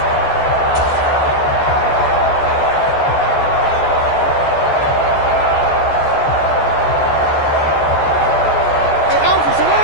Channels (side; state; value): right; late; 14 ms